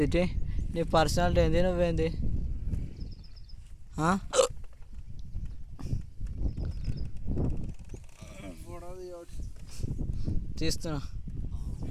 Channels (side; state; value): both; identical; correlation 1.00